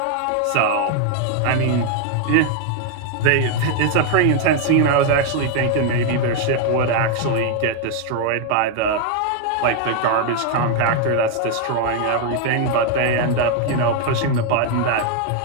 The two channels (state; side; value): different; both; correlation 0.00